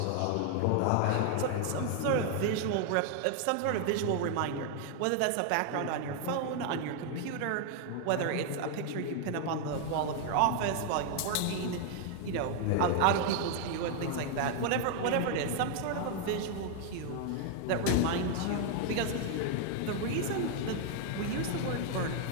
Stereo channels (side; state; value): both; different; correlation 0.00